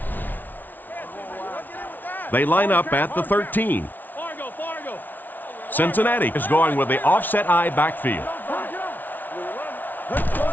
They line up at the 13. Cincinnati is going with the offset eye backfield.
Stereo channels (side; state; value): right; late; 0.085 ms